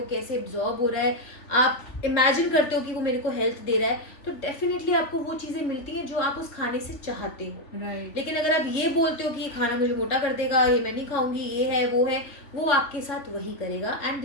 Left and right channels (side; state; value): right; late; 3.5 ms